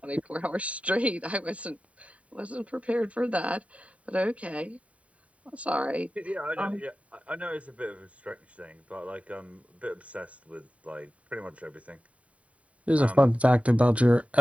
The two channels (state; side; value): late; left; 0.066 ms